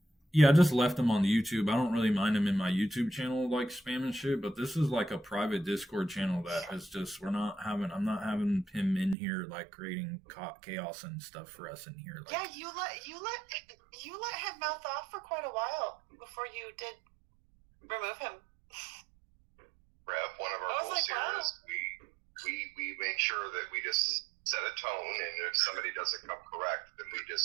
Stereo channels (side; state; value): left; drops out; at 9.2 s